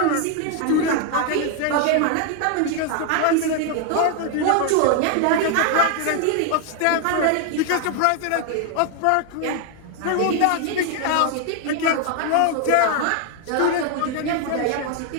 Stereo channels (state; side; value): different; both; correlation 0.00